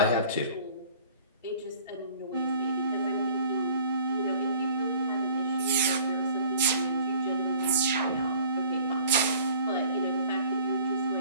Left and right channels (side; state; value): both; inverted; correlation -0.50